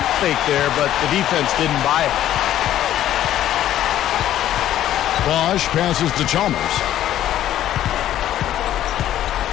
fake there, but the defense didn't buy it. Bosh passes to Chalmers.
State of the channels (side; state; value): right; quieter; 12.2 dB